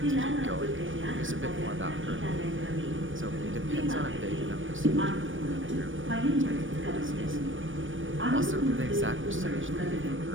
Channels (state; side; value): late; left; 0.57 ms